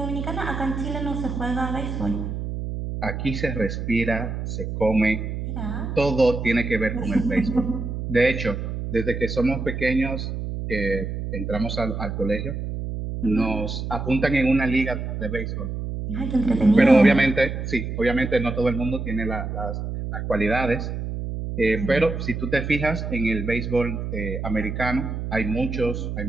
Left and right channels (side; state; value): right; noise; hum, 5 dB below the sound